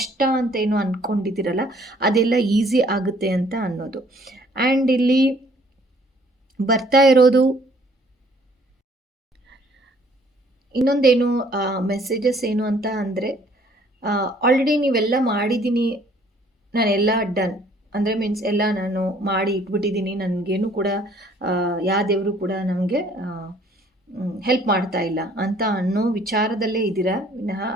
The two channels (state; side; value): normal; both; correlation 0.60